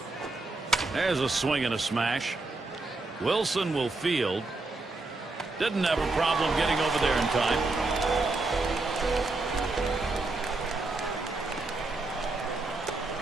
There's a swing and a smash. Wilson will field. Didn't have a problem getting over there in time.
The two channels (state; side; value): quieter; left; 3.3 dB